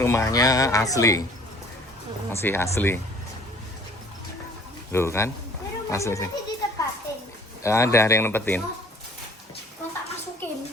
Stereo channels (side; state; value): both; normal; correlation 0.53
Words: asli, masih asli. Loh kan, asli sih. Ada yang nempetin. Kau tak masukin.